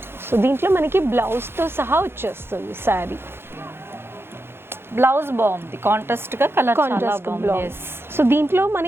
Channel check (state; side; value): late; left; 0.11 ms